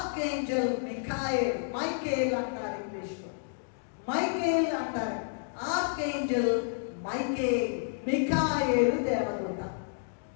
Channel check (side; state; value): right; silent; digital silence